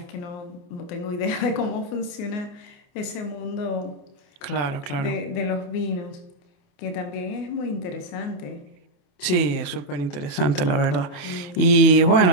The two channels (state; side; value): late; right; 28 ms